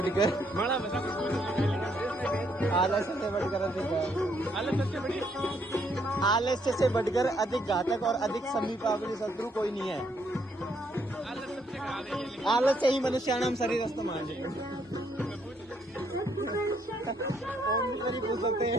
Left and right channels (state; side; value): normal; both; correlation 0.71